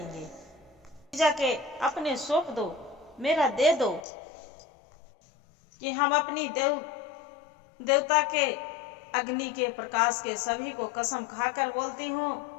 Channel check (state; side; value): drops out; right; at 4.0 s